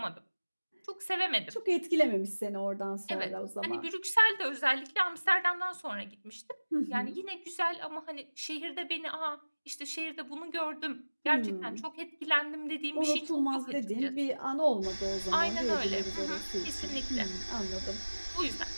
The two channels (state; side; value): inverted; both; correlation -1.00